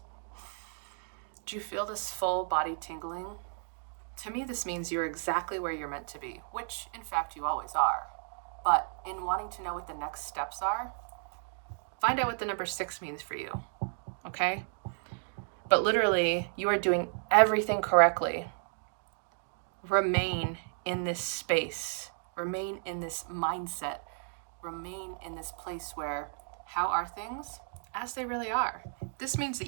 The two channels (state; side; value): silent; left; 56 dB below the other